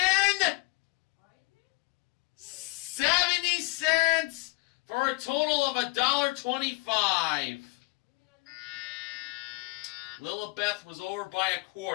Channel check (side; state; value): right; quieter; 25.8 dB